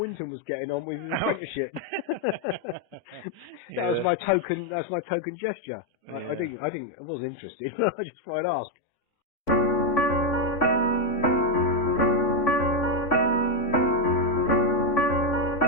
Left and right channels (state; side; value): late; right; 3.5 ms